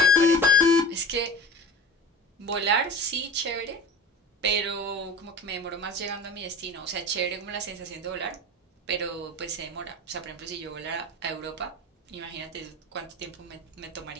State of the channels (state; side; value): normal; both; correlation 0.35